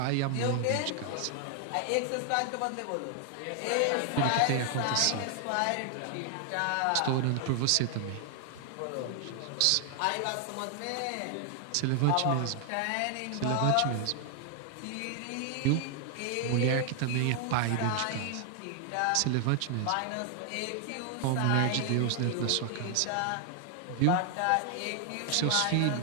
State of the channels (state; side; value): different; both; correlation 0.00